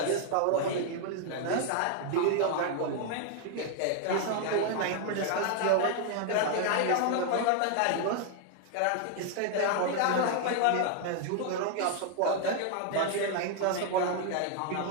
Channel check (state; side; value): different; both; correlation 0.00